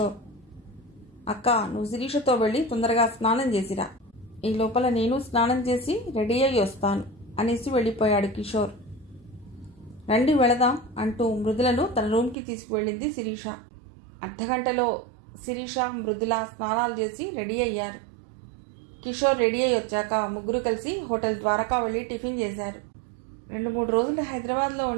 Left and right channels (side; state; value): left; drops out; at 12.4 s